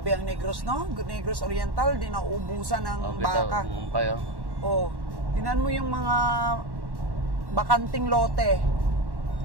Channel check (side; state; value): left; late; 1.1 ms